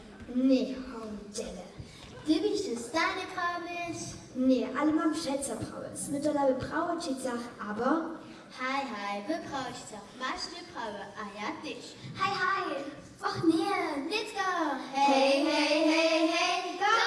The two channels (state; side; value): identical; both; correlation 1.00